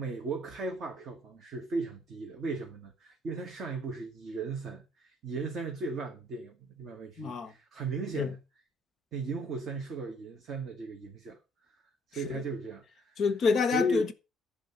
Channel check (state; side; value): normal; both; correlation 0.65